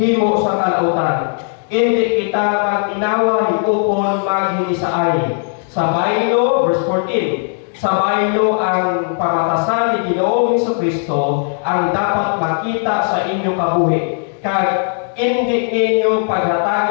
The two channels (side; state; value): right; silent; 58 dB below the other